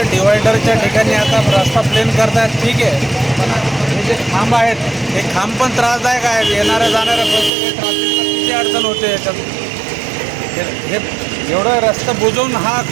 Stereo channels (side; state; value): left; drops out; at 7.5 s